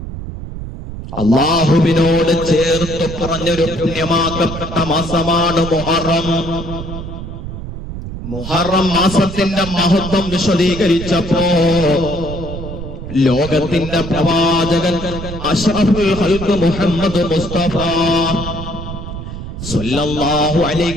അല്ലാഹുവിനോട് ചേർത്ത് പറഞ്ഞൊരു പുണ്യമാക്കപ്പെട്ട മാസമാണ് മുഹറം. മുഹറം മാസത്തിന്റെ മഹത്വം വിശദീകരിച്ചപ്പോ ലോകത്തിന്റെ പ്രവാചകൻ അഷ്റഫുൽ ഖൽഖ് മുഹമ്മദ് മുസ്തഫ സ്വല്ലല്ലാഹു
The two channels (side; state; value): right; noise; rumble, 9 dB below the sound